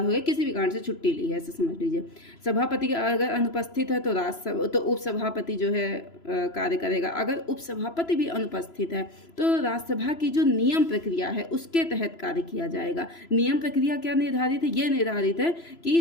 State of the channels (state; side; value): late; right; 3.0 ms